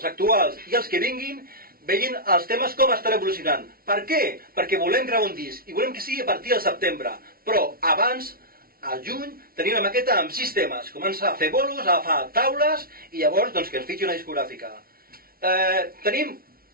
actuals i els que vinguin, vegin els temes com estan evolucionant. Per què? Perquè volem gravar un disc i volem que sigui a partir del setembre. Però abans, al juny, tenim una maqueta amb 6 temes. Comença a fer bolos, a agafar taules i llavors que ens fitxi una discogràfica. Tenim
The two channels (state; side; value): late; left; 0.43 ms